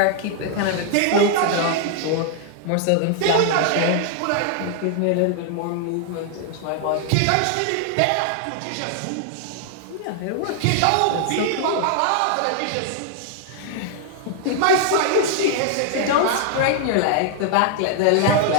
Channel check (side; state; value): both; different; correlation 0.00